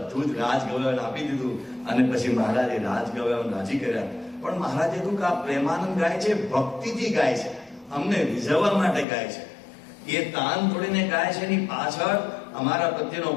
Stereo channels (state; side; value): drops out; right; at 9.1 s